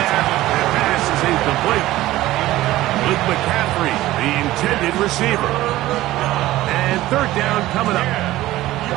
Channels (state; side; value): quieter; left; 16.1 dB